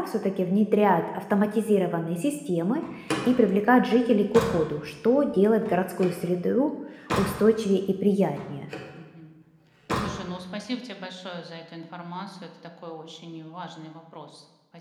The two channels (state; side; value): identical; both; correlation 1.00